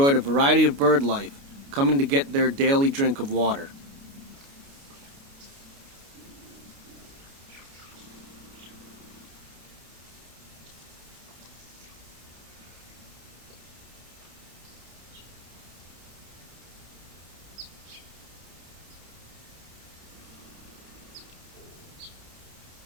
a variety of bird life, coming to get their daily drink of water.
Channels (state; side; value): late; left; 29 ms